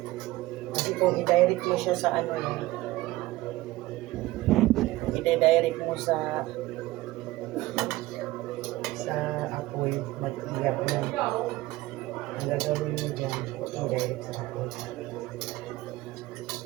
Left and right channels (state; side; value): quieter; left; 18.2 dB